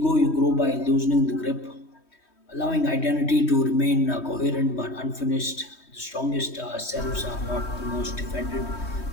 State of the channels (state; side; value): late; right; 3.1 ms